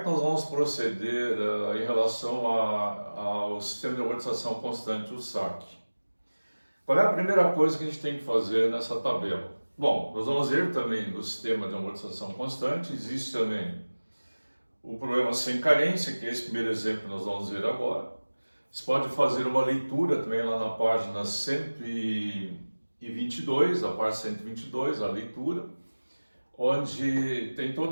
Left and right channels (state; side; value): inverted; both; correlation -1.00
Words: nós vamos proceder em relação ao sistema de amortização constante, o SAC? Qual é a primeira coisa que a gente tem que fazer nessa tabela? Bom, nós vamos ver também no sistema de amortização constante, existe também o problema sem carência, que é esse primeiro exemplo que nós vamos ver agora. Você pode fazer uma leitura também lá na página 122, a parte 122, a leitura, onde tem